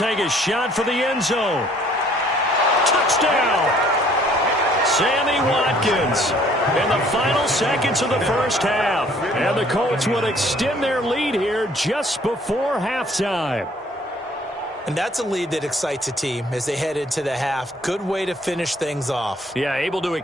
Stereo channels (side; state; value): both; normal; correlation 0.59